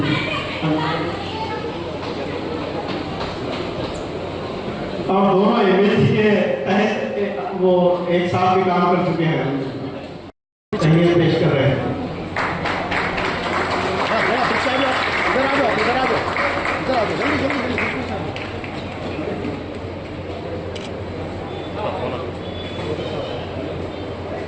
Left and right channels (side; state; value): both; identical; correlation 1.00